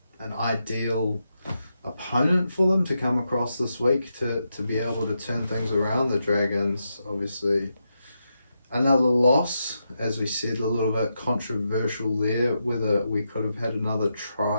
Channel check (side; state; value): both; inverted; correlation -0.85